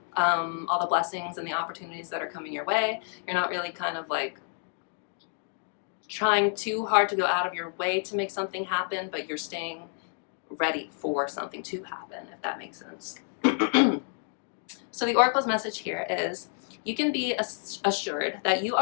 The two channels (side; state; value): right; silent; 55 dB below the other